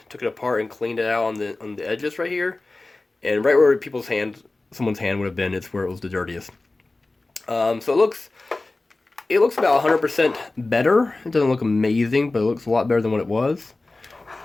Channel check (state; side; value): quieter; right; 3.2 dB